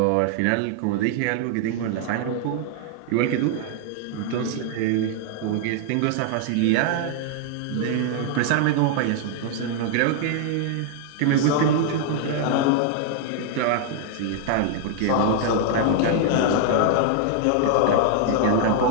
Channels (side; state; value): both; different; correlation 0.00